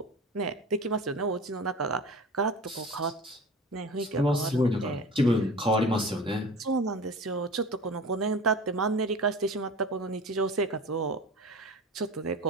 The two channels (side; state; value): both; normal; correlation 0.35